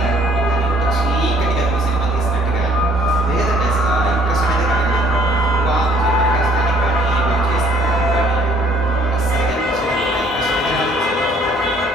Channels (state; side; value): normal; both; correlation 0.61